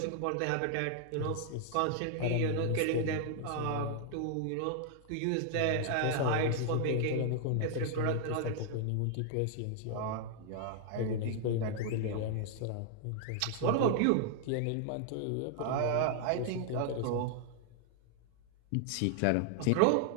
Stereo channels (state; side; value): different; both; correlation 0.00